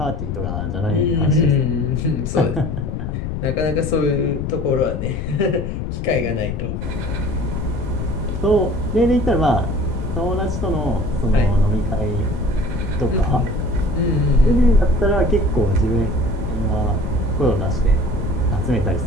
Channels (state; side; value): noise; left; rumble, 4 dB below the sound